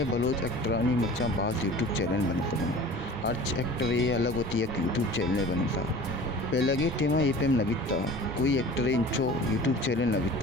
बलोच एक्टरानी मर्चा बाज़ यूट्यूब चैनल बनता हूँ। अर्च एक्टर ये अलग होती है कि यूट्यूब चैनल बनता पहले के टेमा ये पे नबिता कोई एक्टर इंचो यूट्यूब चैनल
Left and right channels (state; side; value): normal; both; correlation 0.41